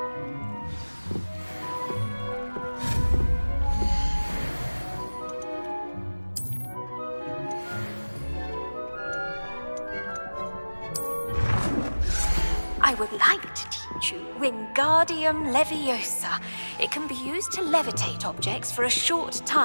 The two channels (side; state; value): both; inverted; correlation -1.00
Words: I would like to teach you Wingardium Leviosa. It can be used to levitate objects for a short